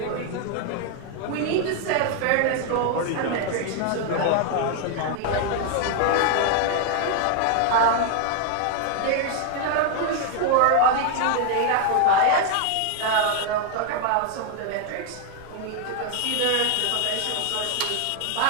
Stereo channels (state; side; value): different; both; correlation 0.00